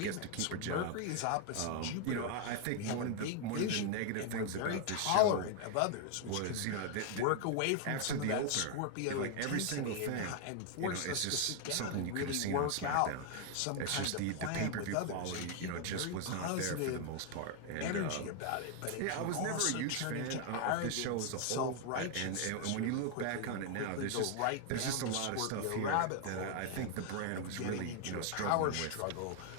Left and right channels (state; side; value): different; both; correlation 0.00